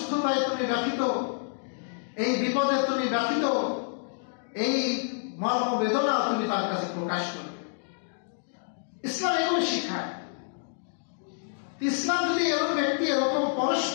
তুমি ব্যথিত, এই বিপদে তুমি ব্যথিত, এই মর্ম বেদনা তুমি তার কাছে প্রকাশ করবে। ইসলাম এগুলো শিখায়। ইসলাম যদি এরকম ব্যক্তি এরকম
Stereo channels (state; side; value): silent; right; digital silence